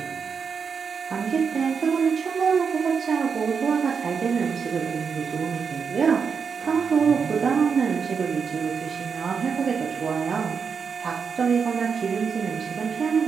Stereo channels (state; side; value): quieter; left; 6.0 dB